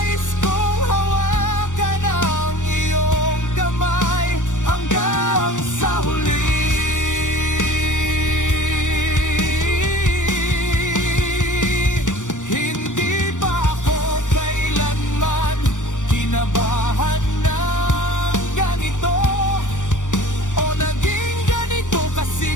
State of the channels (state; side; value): late; right; 0.86 ms